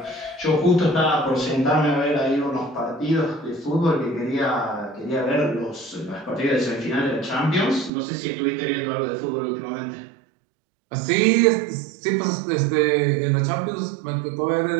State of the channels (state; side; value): drops out; left; at 7.9 s